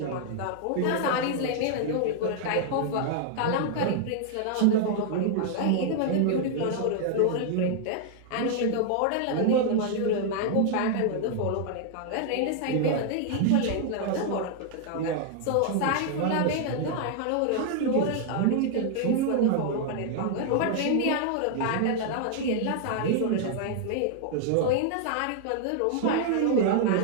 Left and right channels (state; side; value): different; both; correlation 0.00